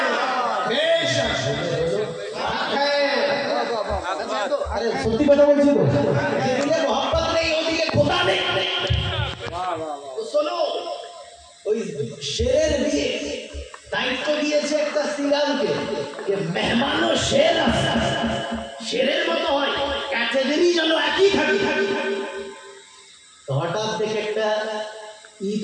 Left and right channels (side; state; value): both; identical; correlation 1.00